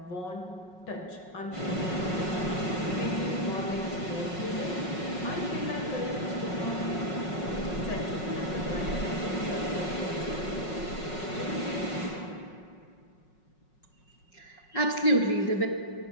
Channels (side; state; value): right; late; 5.5 ms